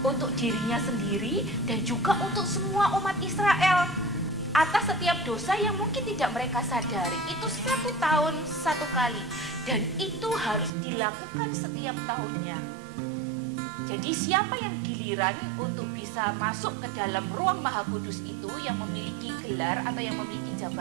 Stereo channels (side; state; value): left; drops out; at 10.7 s